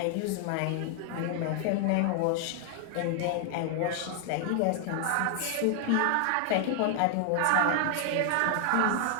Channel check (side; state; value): both; different; correlation 0.00